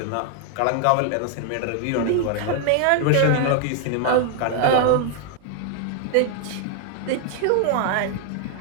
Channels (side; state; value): both; different; correlation 0.00